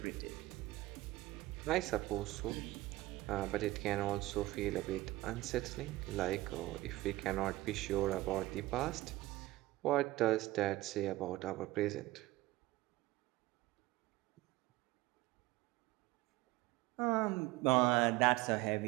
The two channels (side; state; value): left; quieter; 18.5 dB